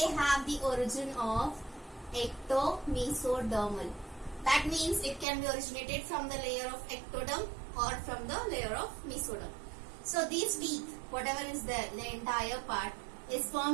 the origin of ectomesodermal. That means it can be originated from the layer of ectoderm or from the layer of mesoderm. So these teeth, whatever is there, the entire part is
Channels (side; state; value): left; drops out; at 5.2 s